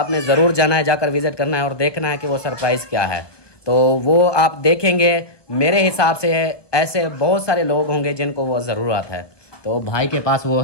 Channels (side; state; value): right; late; 1.2 ms